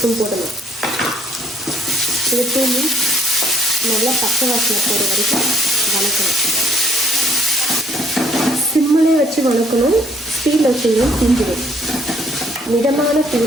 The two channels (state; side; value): normal; both; correlation 0.64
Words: போடணும். இது நல்லா பச்சை வாசனை போகிற வரைக்கும் வணக்கணும். சிம்மிலே வச்சு வணக்கணும். ஸ்டீல் வச்சிங்கன்னா தீஞ்சிடும். மிதமான